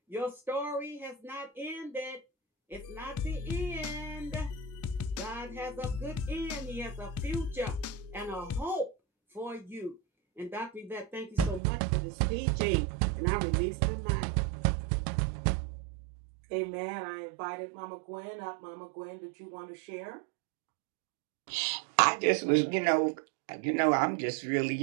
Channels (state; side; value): drops out; left; at 11.6 s